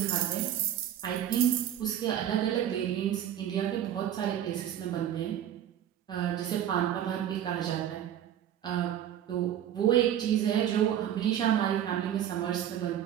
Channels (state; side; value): quieter; left; 10.5 dB